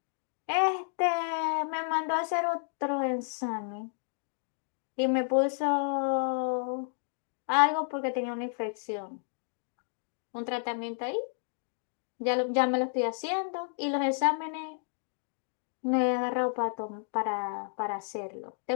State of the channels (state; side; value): silent; right; digital silence